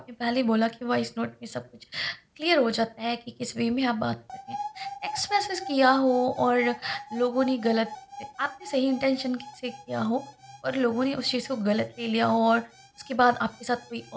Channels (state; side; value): identical; both; correlation 1.00